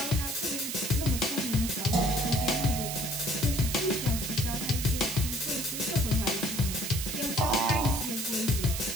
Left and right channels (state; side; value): noise; right; hiss, 4 dB below the sound